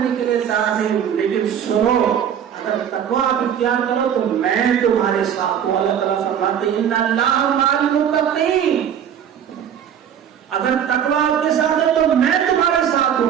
کے لیے تیار نہیں۔ لیکن سنو، اگر تقویٰ آپ اختیار کرو تو میں تمہارے ساتھ ہوں۔ اللہ تعالیٰ فرماتے ہیں ان اللہ مع المتقین، اگر تقویٰ آپ کے ساتھ ہے تو میں تمہارے ساتھ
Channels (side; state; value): left; quieter; 8.9 dB